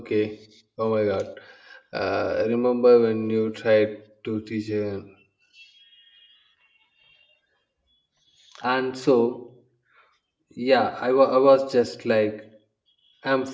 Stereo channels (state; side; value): identical; both; correlation 1.00